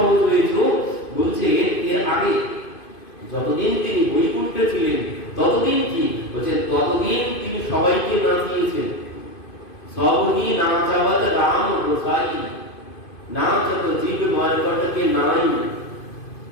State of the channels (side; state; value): right; late; 2.5 ms